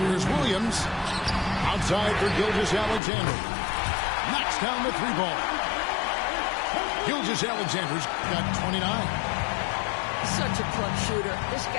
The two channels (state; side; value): drops out; right; at 3.0 s